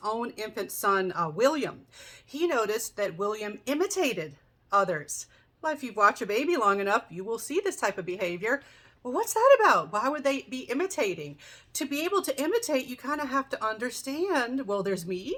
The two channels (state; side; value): identical; both; correlation 1.00